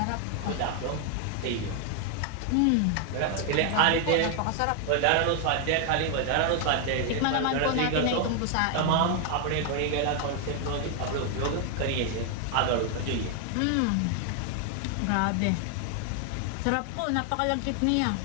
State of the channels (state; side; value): different; both; correlation 0.00